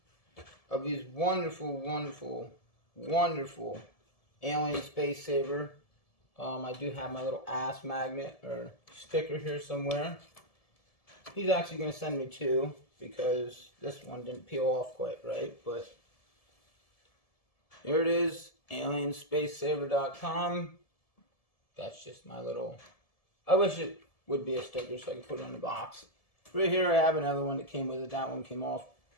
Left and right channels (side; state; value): right; late; 1.7 ms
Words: of these wonderful, wonderful, wonderful alien space saver. I do have my little ass magnet or sticker here somewhere. He's actually going to send me two because this one didn't peel off quite right. But here it is, alienspacesaver.com. That's just my little... I wish it would be a sticker so I could put it on the box. Right here I have another one that came with it. That one came off